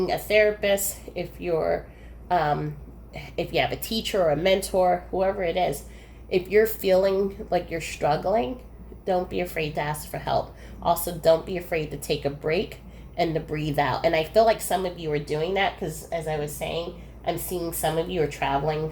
a therapist, if you have a teacher or a mentor, whoever it is, if you're feeling like you're struggling, don't be afraid to ask for help. Also, don't be afraid to take a break and to breathe out. And I feel like some of you are doing that because, as I was saying, I'm seeing some of you are traveling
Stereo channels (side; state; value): both; identical; correlation 1.00